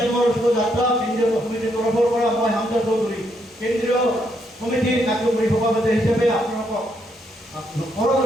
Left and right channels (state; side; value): normal; both; correlation 0.76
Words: মঞ্চ যাত্ৰা কেন্দ্ৰীয় সমিতিৰ তৰফৰ পৰা মই হামজা চৌধুৰী কেন্দ্ৰীয় সমিতিৰ কাৰ্যকৰী সভাপতি হিচাপে আপোনালোকক